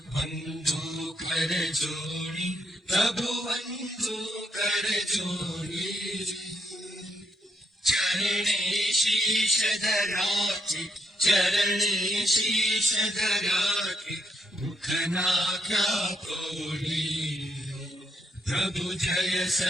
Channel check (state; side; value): normal; both; correlation 0.76